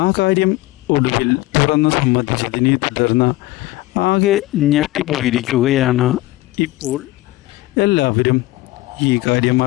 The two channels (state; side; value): quieter; right; 18.2 dB